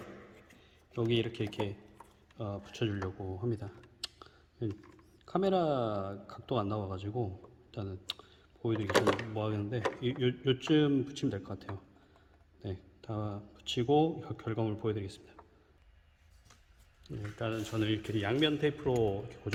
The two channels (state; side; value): identical; both; correlation 1.00